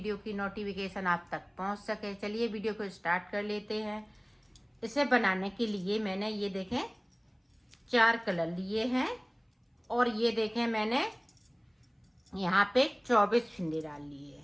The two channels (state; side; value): identical; both; correlation 1.00